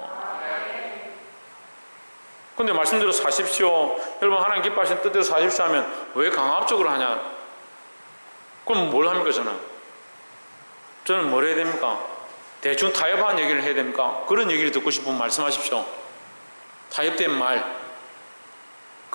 근데 말씀대로 사십시오, 여러분 하나님 기뻐하시는 뜻대로 사십시오 하면 왜 강압적으로 하냐? 그럼 뭘 합니까? 저는 뭘 해야 됩니까? 대충 타협한 얘기를 해야 됩니까? 그런 얘기를 듣고 싶으면 말씀하십시오. 타협된 말.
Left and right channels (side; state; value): both; inverted; correlation -1.00